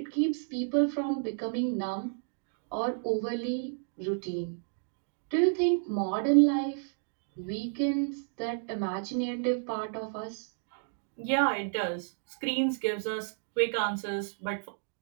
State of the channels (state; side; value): silent; left; digital silence